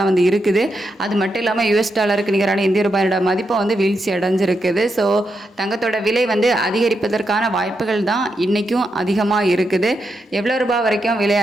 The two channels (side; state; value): both; normal; correlation 0.84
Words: வந்து இருக்குது. அது மட்டும் இல்லாமல் யூஎஸ் டாலருக்கு நிகரான இந்திய ரூபாயோட மதிப்பை வந்து வீழ்ச்சி அடைஞ்சிருக்குது. ஸோ தங்கத்தோட விலை வந்து அதிகரிப்பதற்கான வாய்ப்புகள் தான் இன்றைக்கும் அதிகமாக இருக்குது. எவ்வளோ ரூபாய் வரைக்கும் விலை